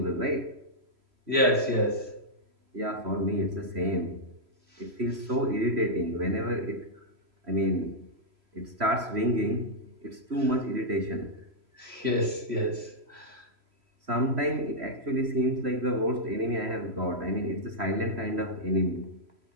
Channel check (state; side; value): late; left; 3.0 ms